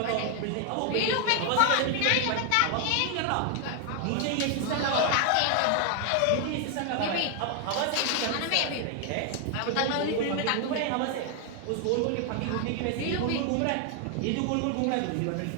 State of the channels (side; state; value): both; different; correlation 0.00